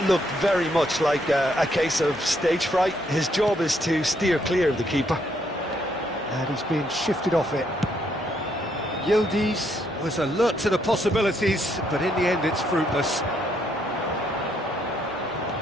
looked very much like a case of stage fright. His job is to steer clear of the keeper. And he's being shifted off it. Yildiz was alert to the possibilities, but in the end it's fruitless.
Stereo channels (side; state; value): both; normal; correlation 0.73